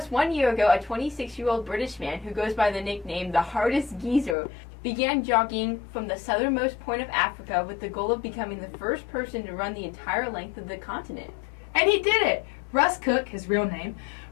1 year ago, a 26-year-old British man who goes by the nickname the Hardest Geezer began jogging from the southernmost point of Africa with the goal of becoming the first person to run the entire length of the continent. And he did it! Russ Cook, his real name,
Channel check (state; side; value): drops out; right; at 4.4 s